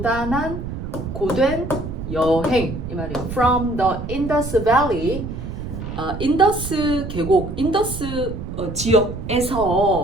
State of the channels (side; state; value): right; noise; rumble, 7 dB below the sound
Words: 고된 여행 이 말이에요. From the Indus Valley, 인더스 계곡, 인더스 지역에서